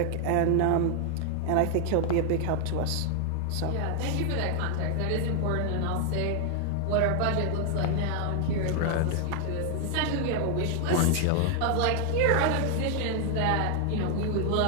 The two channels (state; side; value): different; both; correlation 0.00